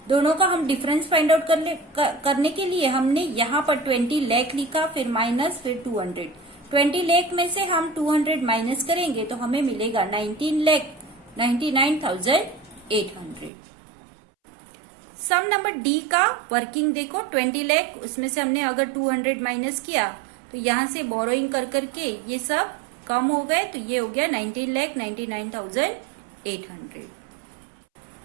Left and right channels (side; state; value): left; drops out; at 13.5 s